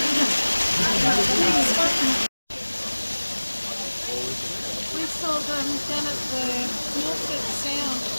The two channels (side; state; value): both; inverted; correlation -1.00